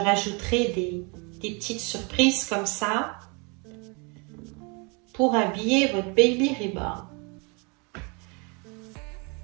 des petites surprises comme ça pour habiller votre baby reborn.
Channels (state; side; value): quieter; left; 31.5 dB